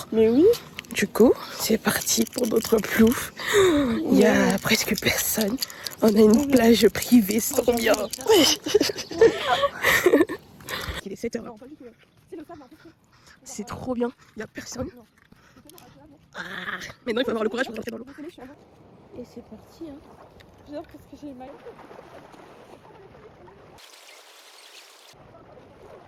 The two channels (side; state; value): both; identical; correlation 1.00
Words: Mais oui. Du coup, c'est parti pour notre plouf. Il y a presque personne. On a une plage privée, c'est trop bien. Il est 7h. C'est trop bien, il n'y a personne. Ah, maintenant il faut avoir le courage pour rentrer dans l'eau. Et c'est parti. Hein. J'adore parce que j'ai mal.